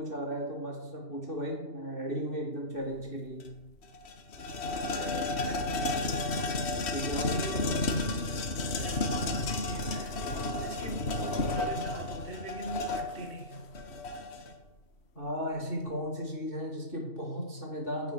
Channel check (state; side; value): late; right; 2.7 ms